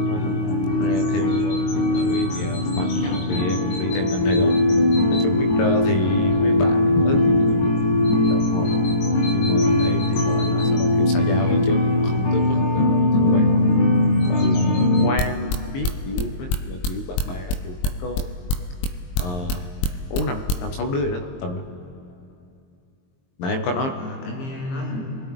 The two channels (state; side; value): late; right; 22 ms